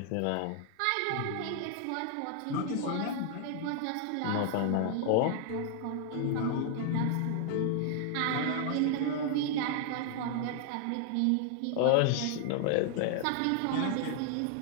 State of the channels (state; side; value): different; both; correlation 0.00